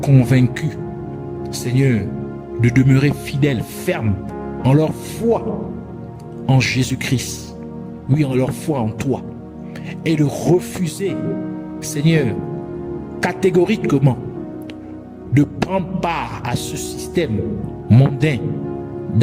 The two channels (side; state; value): both; identical; correlation 1.00